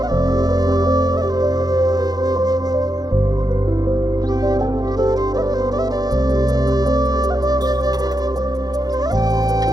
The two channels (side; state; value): left; late; 0.19 ms